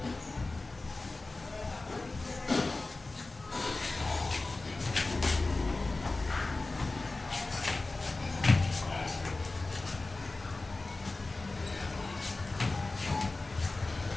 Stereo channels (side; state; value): right; quieter; 3.3 dB